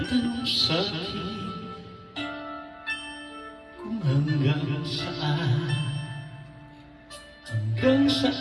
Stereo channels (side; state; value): both; identical; correlation 1.00